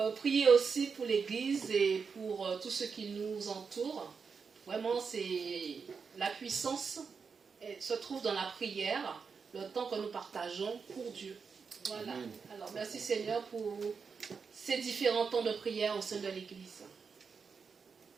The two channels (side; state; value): left; quieter; 5.6 dB